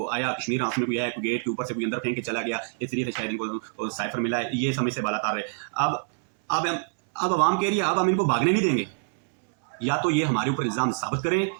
آیا کشمیر ہاؤس میں کوئی آیا, کوئی گیٹ کے اوپر سے کوئی اندر پھینک کے چلا گیا, اس لیے سے شاید ان کو سائفر ملا ہے. یہ سمجھ سے بالا تار ہے. اب عوام کہہ رہی ہے اب ہم ان کو بھاگنے نہیں دیں گے. یا تو یہ ہمارے اوپر الزام ثابت کریں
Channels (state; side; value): silent; left; 61 dB below the other